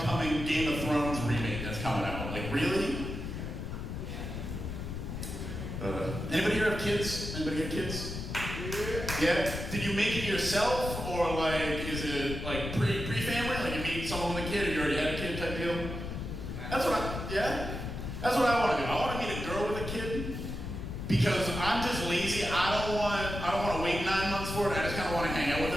Game of Thrones remake that's coming out. Like, really? Anybody here have kids? Anybody have kids? Yeah? Did you make it yourself, or like, is it like pre-family? Like you meet someone with a kid, or you already had a kid type deal? That's what I want to do. I want to meet a girl with a kid, because I'm just lazy. I don't want to wait 9 months for it. I just kind of want to hang out with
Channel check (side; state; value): left; noise; rumble, 6 dB below the sound